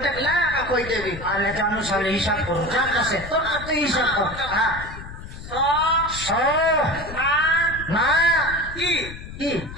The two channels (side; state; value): left; noise; rumble, 12 dB below the sound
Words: লাকা কই দেবি আলে জানু সালে হিসাব করো যা কাছে তোর তুই হিসাব কর সো না কি কি